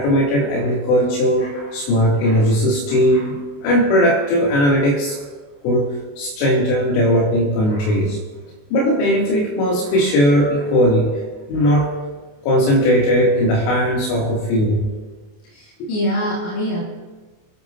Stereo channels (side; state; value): right; late; 28 ms